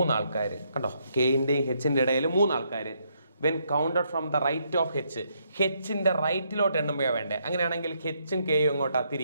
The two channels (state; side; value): inverted; both; correlation -0.74